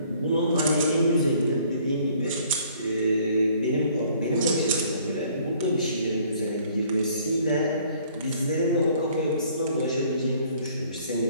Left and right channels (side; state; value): both; inverted; correlation -0.58